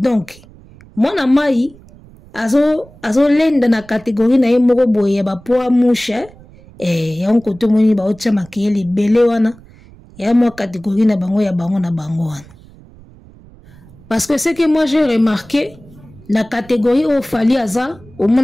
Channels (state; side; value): noise; right; rumble, 23 dB below the sound